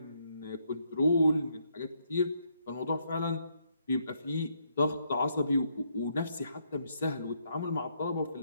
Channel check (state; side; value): inverted; both; correlation -0.74